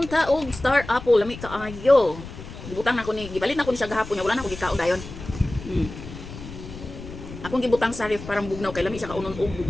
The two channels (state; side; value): noise; left; rumble, 12 dB below the sound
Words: og star apple lami kaayo. Gibutang nako ni gipalit nako ni siya gahapon, wala na ko gikaon dayon. Hmm. Akong gibutang sa ref parang bugnaw kay lami siya kaunon og